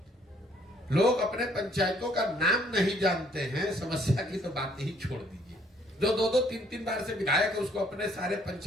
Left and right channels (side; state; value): both; normal; correlation 0.64